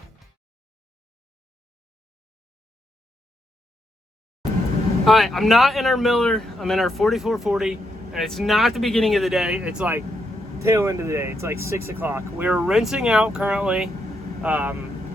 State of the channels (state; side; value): normal; both; correlation 0.79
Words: All right, I'm not in our miller. I'm in our 4440, and it's not the beginning of the day. It's like tail end of the day. It's like 6 o'clock. We're rinsing out currently